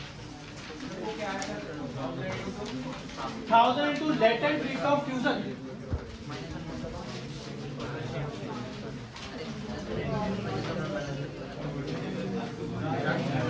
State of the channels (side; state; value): both; identical; correlation 1.00